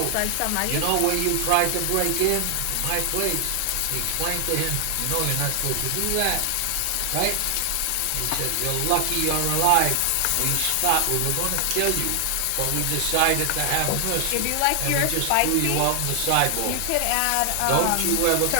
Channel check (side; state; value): both; different; correlation 0.00